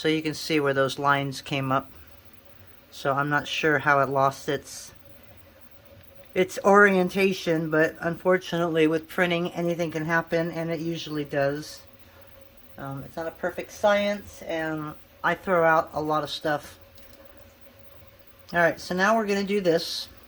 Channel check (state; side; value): identical; both; correlation 1.00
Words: you can see where those lines came up. So I'm not sure how it lost its orientation, but unfortunately with printing anything can happen, and it usually does. It's not a perfect science, and I throw out a lot of stuff. Alright, so now we're going to do this.